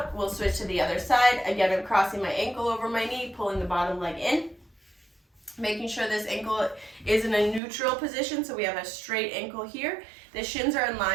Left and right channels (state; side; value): drops out; left; at 7.6 s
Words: We'll switch to the other side. Again, I'm crossing my ankle over my knee, pulling the bottom leg in. Making sure this ankle is in a neutral position, so we have a straight ankle here. The shins are in